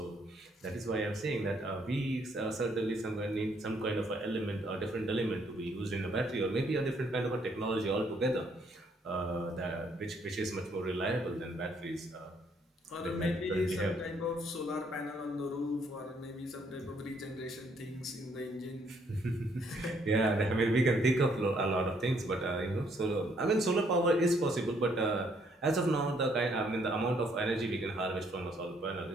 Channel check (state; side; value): normal; both; correlation 0.68